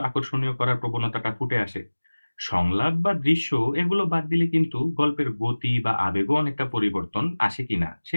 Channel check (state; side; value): inverted; both; correlation -1.00